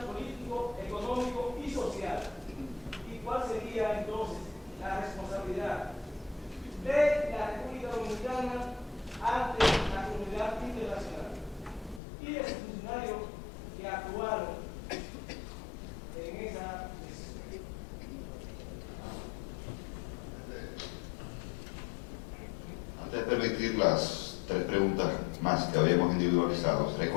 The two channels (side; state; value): right; drops out; at 12.0 s